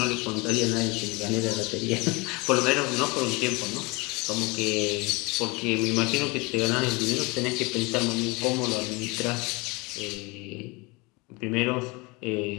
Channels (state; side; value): quieter; right; 26.2 dB